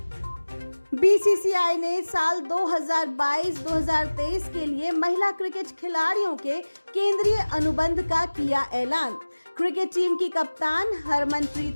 बीसीसीआई ने साल 2022-2023 के लिए महिला क्रिकेट खिलाड़ियों के केंद्रीय अनुबंध का किया ऐलान। क्रिकेट टीम की कप्तान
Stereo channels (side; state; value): both; inverted; correlation -1.00